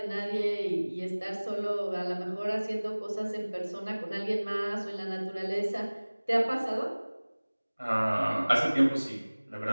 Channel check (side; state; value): both; inverted; correlation -1.00